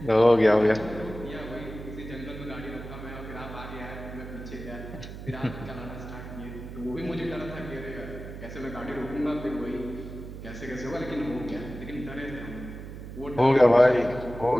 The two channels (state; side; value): noise; right; hum, 11 dB below the sound